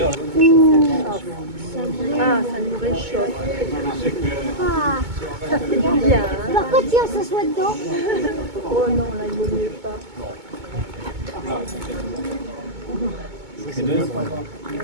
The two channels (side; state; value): left; late; 2.2 ms